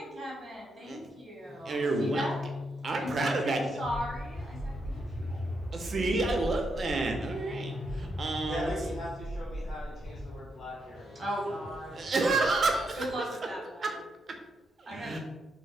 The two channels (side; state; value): both; normal; correlation 0.81